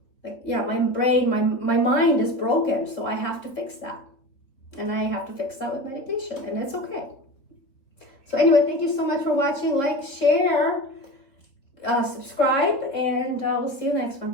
Like, yeah, my mind is broken. So I have to fix that. And I have to fix that with medication, and it's okay. So anyway, thank you so much for watching. Like, share, subscribe, and we'll see you next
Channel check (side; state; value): right; late; 3.8 ms